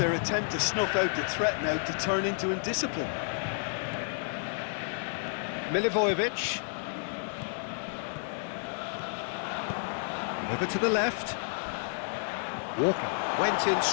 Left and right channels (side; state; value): right; silent; digital silence